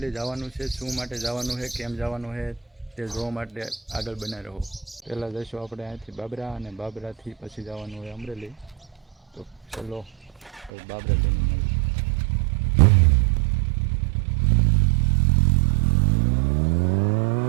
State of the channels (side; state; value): left; drops out; at 10.7 s